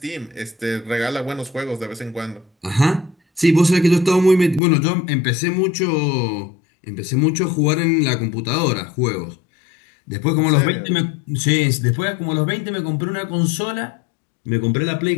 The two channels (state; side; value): drops out; right; at 4.6 s